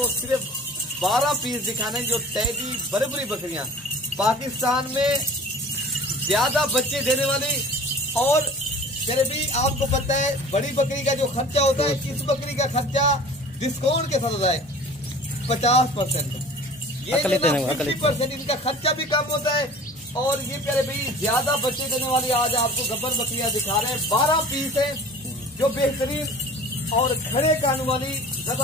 सिर्फ 12 पीस दिखाने जो टैडी बड़ी बकरियाँ पाकिस्तान में ज्यादा बच्चे देने वाली। और प्यारे भी आपको पता है बड़ी बकरी का जो खर्चा होता है, इस बकरी का खर्चा डिस्काउंट के साथ होता है 50%। ये 50% इनका खर्चा भी कम होता है। और ये प्यारे भाई ज्यादा बच्चे देने वाली आज आपको गब्बर बकरियां दिखा रहे हैं। 12 पीस है जो बेहतरीन और खड़े कान वाली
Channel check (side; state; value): both; normal; correlation 0.43